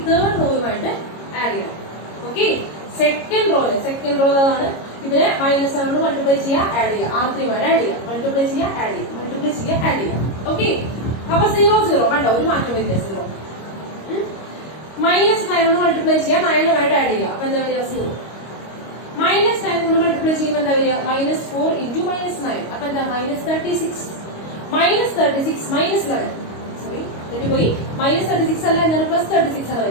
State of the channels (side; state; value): right; late; 25 ms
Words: തേർഡ് റോയുമായിട്ട് ആഡ് ചെയ്യണം. ഓക്കെ, സെക്കൻഡ് റോ ആണ്. ഇതിനെ -7 കൊണ്ട് മൾട്ടിപ്ലൈ ചെയ്യുക, ആഡ് ചെയ്യുക, R3 ആഡ് ചെയ്യുക, മൾട്ടിപ്ലൈ ചെയ്യുക, ആഡ് ചെയ്യുക, മൾട്ടിപ്ലൈ ചെയ്യുക, ആഡ് ചെയ്യുക. ഓക്കെ, അപ്പൊ 0 0 കണ്ടോ, ഒരു മാറ്റം വരില്ല. 0 -9 കൊണ്ട് മൾട്ടിപ്ലൈ ചെയ്യുക, 9 ആയിട്ട് ആഡ് ചെയ്യുക. അപ്പൊ എന്താ വരിക? 0. -9 കൊണ്ട് മൾട്ടിപ്ലൈ ചെയ്യുമ്പോൾ എന്താ വരിക? -4 into -9. അപ്പൊ എന്താ? -36. -36 -11 സോറി തെറ്റിപ്പോയി. -36 അല്ല, എന്താണ്? +36 ആണ്